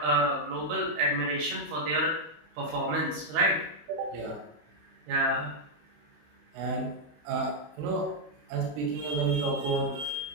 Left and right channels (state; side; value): late; left; 19 ms